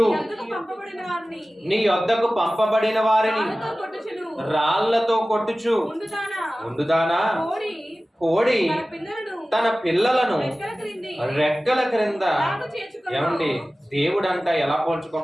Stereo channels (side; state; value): both; normal; correlation 0.96